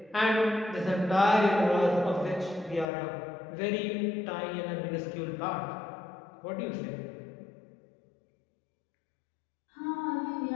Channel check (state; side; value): drops out; right; at 2.9 s